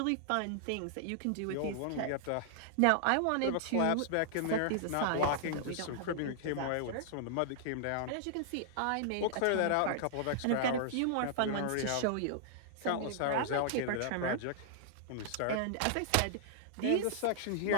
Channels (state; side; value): different; both; correlation -0.01